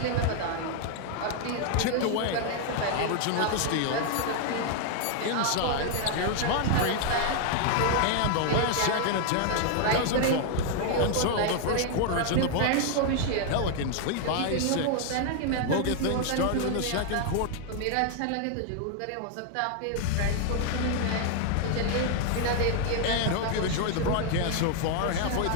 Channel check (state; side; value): different; both; correlation 0.00